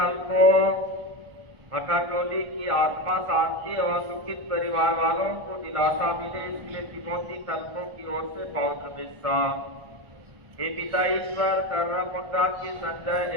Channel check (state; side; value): late; left; 1.3 ms